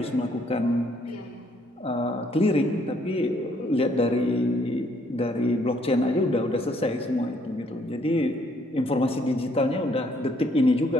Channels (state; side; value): normal; both; correlation 0.67